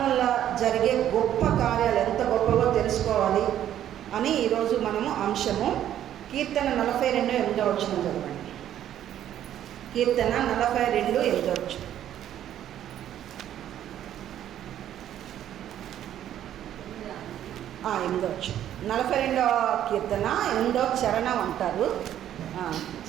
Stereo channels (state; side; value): quieter; left; 11.2 dB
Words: జరిగే గొప్ప కార్యాలు ఎంత గొప్పవో తెలుసుకోవాలి అని ఈరోజు మనము అంశము. కీర్తన 42:8 చదవండి. కీర్తన 42:8. 42వ కీర్తన 8వ చరణం అంటారు.